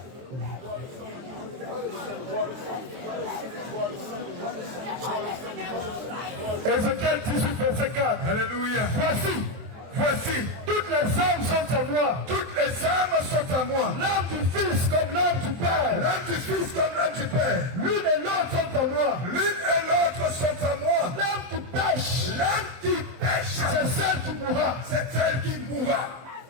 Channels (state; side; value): late; left; 23 ms